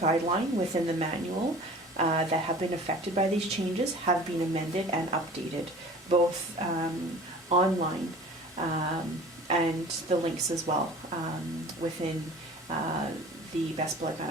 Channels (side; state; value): both; normal; correlation 0.43